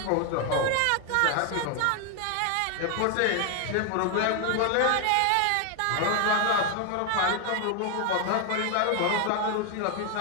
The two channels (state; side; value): different; both; correlation 0.00